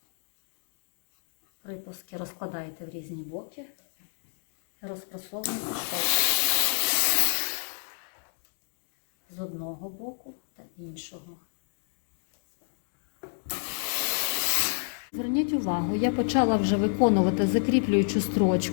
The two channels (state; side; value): silent; right; digital silence